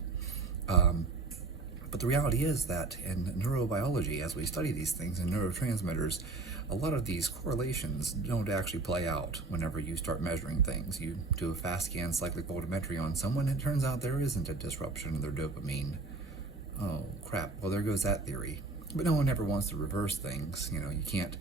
But the reality is that in neurobiology, as we study these things in neurotransmitters, a lot of these correlations don't actually play out whenever you start measuring things. You do a fast scan cyclic voltammetry on someone, and it turns out there isn't a disruption of their dopamine. Oh, crap. Well, there goes that theory. But no one ever wants to reverse things. You know, you can't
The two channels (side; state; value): left; quieter; 3.6 dB